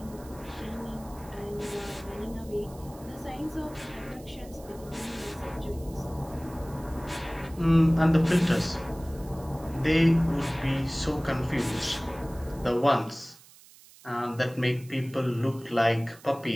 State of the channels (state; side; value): noise; right; hiss, 23 dB below the sound